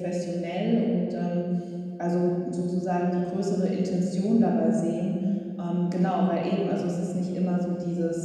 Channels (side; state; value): both; identical; correlation 1.00